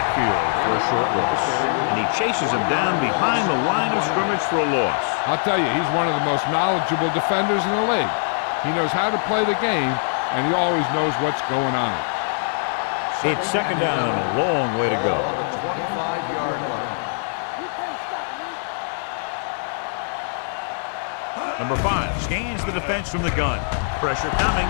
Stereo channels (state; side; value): silent; right; digital silence